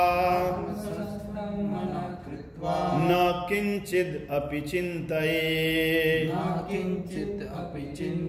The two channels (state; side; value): identical; both; correlation 1.00